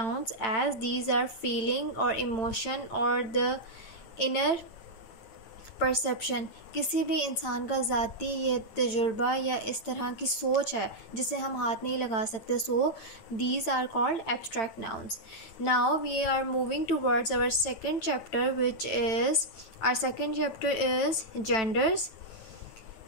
as these are feeling or emotion or the inner perception. किसी भी इंसान का ज़ाती ये तजुर्बा या इस तरह की सोच है जिसे हम हाथ नहीं लगा सकते। So these are called abstract nouns. Now we are moving towards our second chapter which is genders.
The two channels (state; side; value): late; right; 9.0 ms